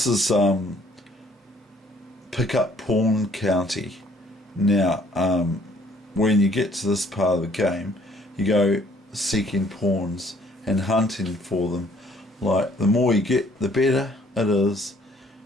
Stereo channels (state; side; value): normal; both; correlation 0.61